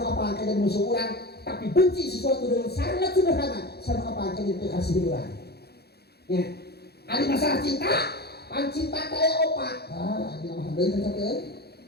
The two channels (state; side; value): late; right; 0.47 ms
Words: apa akan jadi musuh orang tapi benci sesuatu dengan sangat sederhana sama apa akan jadi kasih orang ya ada masalah cinta pan cinta kaya opat ini nama handai kan sakit